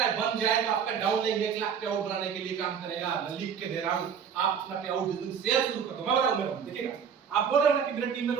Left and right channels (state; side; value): quieter; left; 7.3 dB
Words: बन जाए तो आपका डाउनलाइन 1 लाख पे आउट बनाने के लिए काम करेगा। मैं लिख के दे रहा हूं, आप अपना पे आउट शेयर शुरू कर दो। मैं बताऊंगा, देखिएगा। आप बोल रहे हो ना कि मेरे टीम में